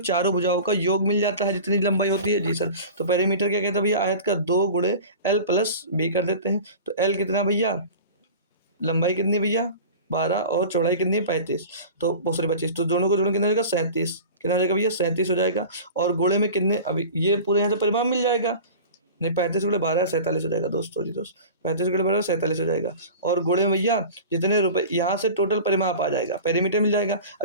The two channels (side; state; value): both; inverted; correlation -0.36